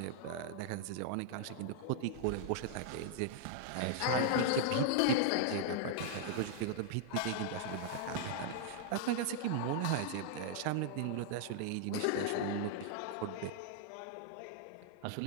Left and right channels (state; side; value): different; both; correlation -0.01